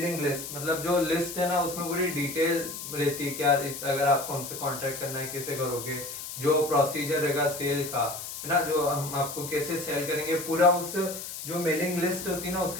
लिस्ट, मतलब जो लिस्ट है ना उसमें पूरी डिटेल रहती है, क्या अगर आपको हमसे कांटेक्ट करना है कैसे करोगे, जो प्रोसीजर रहेगा सेल का, है ना, जो हम आपको कैसे सेल करेंगे, पूरा उस जो मेलिंग लिस्ट होती है ना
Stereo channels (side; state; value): left; noise; hiss, 8 dB below the sound